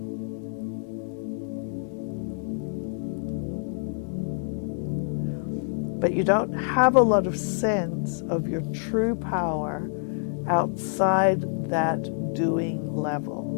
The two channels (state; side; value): silent; right; 60 dB below the other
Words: But you don't have a lot of sense of your true power outside that doing level.